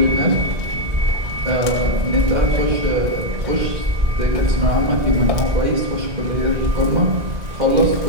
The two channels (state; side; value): late; left; 1.6 ms